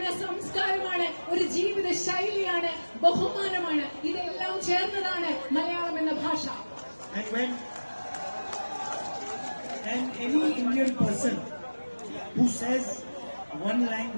സംസ്കാരമാണ്, ഒരു ജീവിത ശൈലിയാണ്, ബഹുമാനമാണ്. ഇതെല്ലാം ചേർന്നതാണ് മലയാളം എന്ന ഭാഷ. And any Indian person who says one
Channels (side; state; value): both; inverted; correlation -1.00